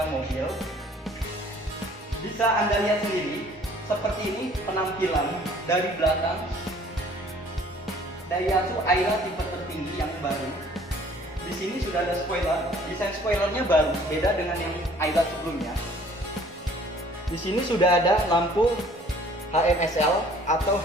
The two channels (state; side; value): normal; both; correlation 0.55